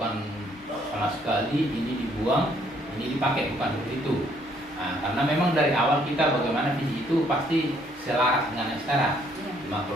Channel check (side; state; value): both; normal; correlation 0.66